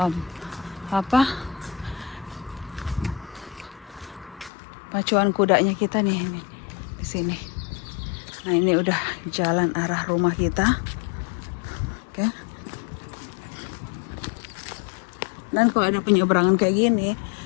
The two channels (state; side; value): drops out; right; at 4.5 s